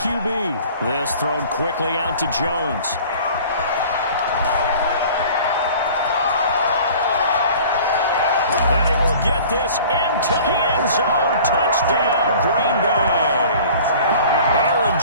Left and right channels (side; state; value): both; inverted; correlation -0.46